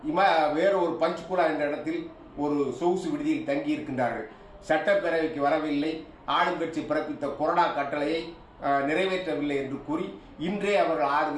வேறொரு பஞ்ச்குலா என்ற இடத்தில் ஒரு சொகுசு விடுதியில் தங்கி இருக்கின்றார்கள். சட்டப்பேரவைக்கு வரவில்லை, ஆளுங்கட்சி பிறப்பித்த கொறடா கட்டளையை நிறைவேற்றவில்லை என்று கூறி இன்றே அவர்கள் 6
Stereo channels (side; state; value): both; identical; correlation 1.00